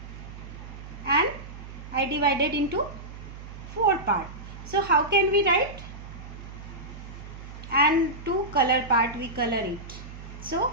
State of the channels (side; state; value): right; noise; hum, 13 dB below the sound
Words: and I divided into 4 parts. So how can we write? And two color part we color it. So